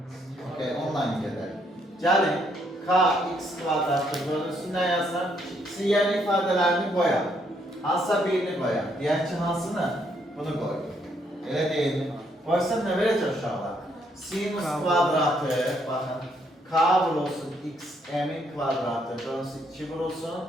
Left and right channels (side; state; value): both; normal; correlation 0.72